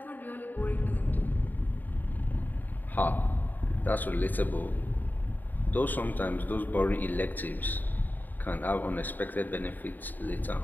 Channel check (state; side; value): late; right; 0.088 ms